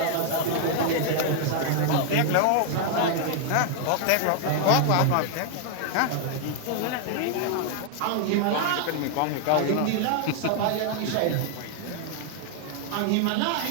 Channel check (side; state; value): both; different; correlation 0.00